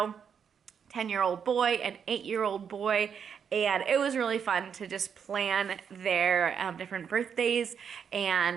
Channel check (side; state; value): left; quieter; 7.3 dB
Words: 10-year-old boy, an 8-year-old boy, and it was really fun to just plan their different birthdays.